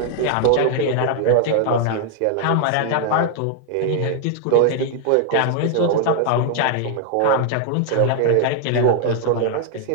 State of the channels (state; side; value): different; both; correlation 0.00